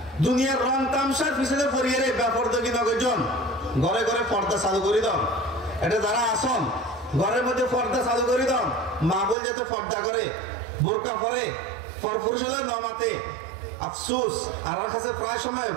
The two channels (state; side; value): drops out; left; at 9.3 s